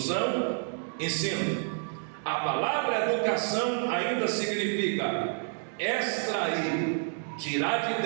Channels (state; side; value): silent; left; 58 dB below the other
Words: ensino. A palavra educação ainda significa extrair, tirar de